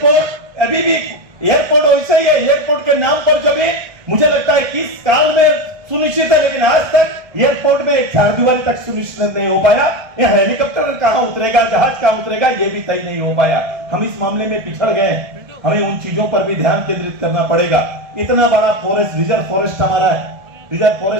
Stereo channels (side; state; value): left; late; 1.7 ms